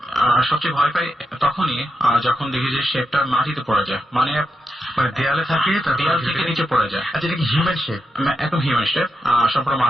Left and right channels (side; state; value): both; normal; correlation 0.86